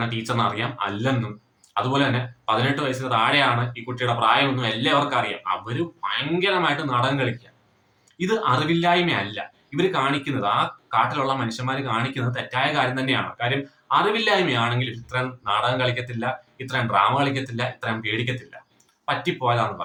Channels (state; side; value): identical; both; correlation 1.00